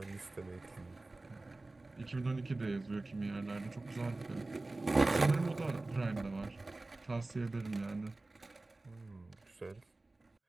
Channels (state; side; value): quieter; left; 3.1 dB